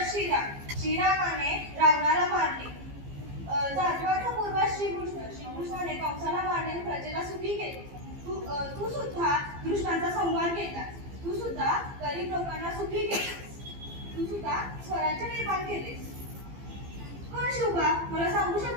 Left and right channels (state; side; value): late; left; 15 ms